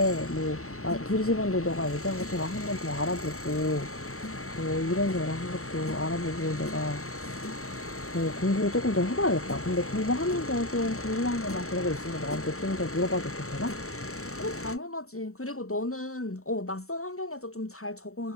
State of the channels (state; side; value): late; right; 0.64 ms